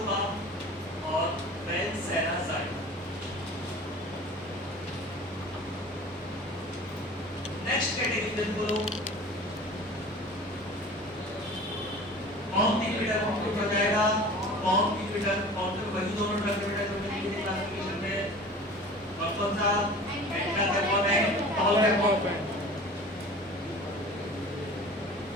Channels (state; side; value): normal; both; correlation 0.41